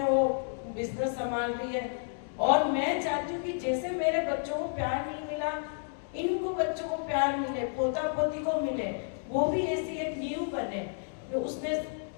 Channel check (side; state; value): right; silent; digital silence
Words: वो बिजनेस संभाल रही है, और मैं चाहती हूँ कि जैसे मेरे बच्चों को प्यार नहीं मिला, इनको बच्चों को प्यार मिले, पोता पोती को मिले, वो भी ऐसी एक नींव बने। तो उसने